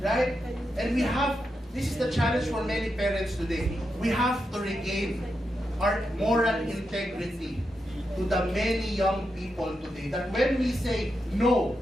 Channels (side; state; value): both; normal; correlation 0.86